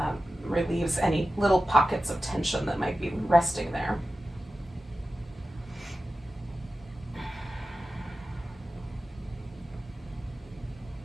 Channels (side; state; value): both; normal; correlation 0.93